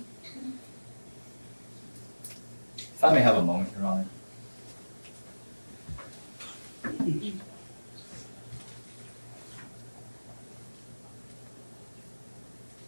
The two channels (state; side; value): inverted; both; correlation -1.00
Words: If I may have a moment, Your Honor.